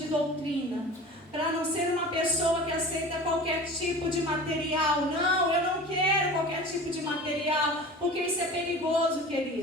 doutrina. Para não ser uma pessoa que aceita qualquer tipo de material. Não, eu não quero qualquer tipo de material, porque isso é perigoso,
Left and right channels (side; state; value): both; normal; correlation 0.38